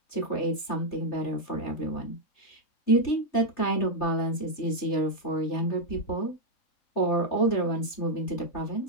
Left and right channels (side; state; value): right; late; 3.3 ms